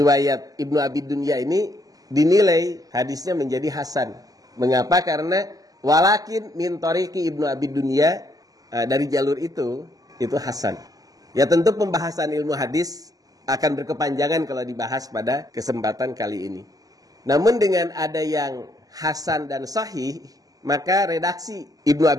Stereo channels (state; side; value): late; left; 0.17 ms